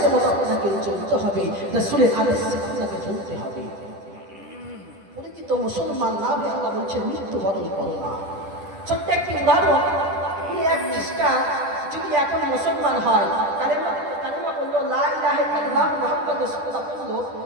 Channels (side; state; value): left; late; 10 ms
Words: মতো আপনাকে চলতে হবে, রাসূলের আদেশে আপনাকে চলতে হবে। তো মুসলমান না হয়ে আল্লাহ বলছেন মৃত্যুবরণ করো না। ছোট্ট একটি উদাহরণ, এক খ্রিস্টান যদি এখন মুসলমান হয়, কালেমা বললো লা ইলাহা ইল্লাল্লাহ মুহাম্মাদুর রাসূলুল্লাহ বললো,